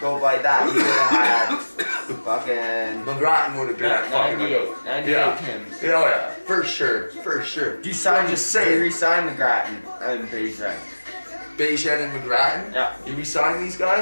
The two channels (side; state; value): both; inverted; correlation -1.00